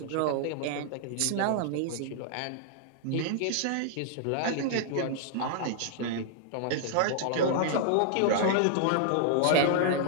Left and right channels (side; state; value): both; different; correlation 0.00